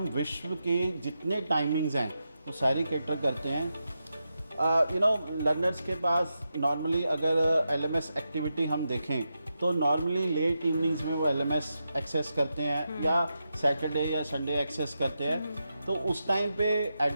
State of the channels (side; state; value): both; inverted; correlation -0.88